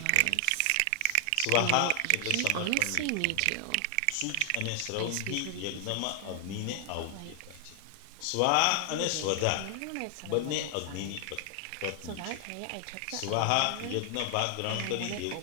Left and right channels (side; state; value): both; different; correlation 0.00